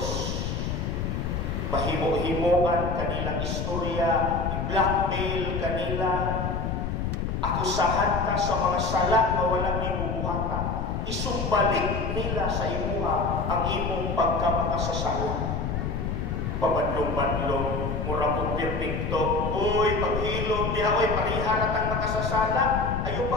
Mahimo-himoan kanilang istorya, i-blackmail kanila, akusahan ka sa mga sala na walang ibubuhata, isumbalik nila sa imuha ang imong pagkamakasasala. Pabadlong-badlong, mura pong perfecto, uy, paghilom, diha, uy, pariharat ang makasasala, ayaw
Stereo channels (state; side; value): noise; left; rumble, 2 dB below the sound